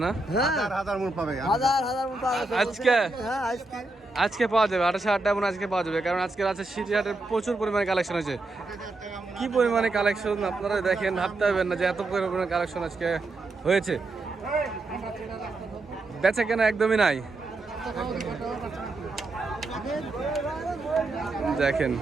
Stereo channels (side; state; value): left; quieter; 3.1 dB